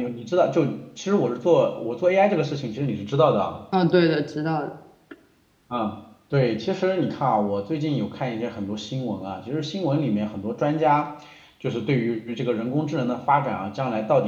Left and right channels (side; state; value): both; identical; correlation 1.00